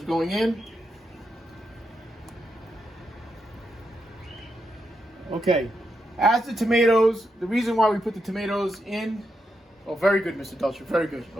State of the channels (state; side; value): normal; both; correlation 0.84